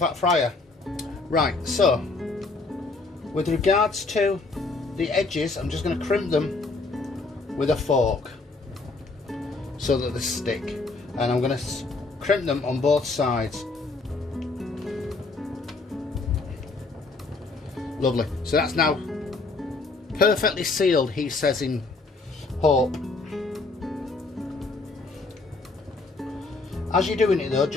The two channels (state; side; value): quieter; right; 3.6 dB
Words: fryer. Right, so with regards to the edges, I'm just going to crimp them with a fork so that they stick, and I'm going to crimp them on both sides. Lovely, so that's now perfectly sealed, he says in hope. As you're doing it though,